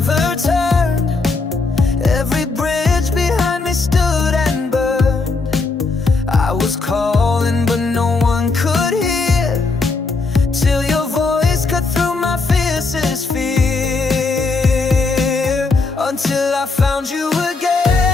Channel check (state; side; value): quieter; right; 4.0 dB